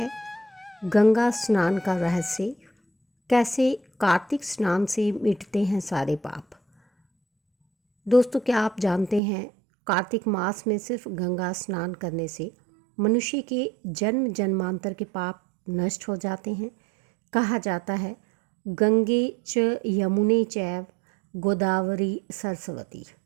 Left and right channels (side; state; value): left; drops out; at 9.2 s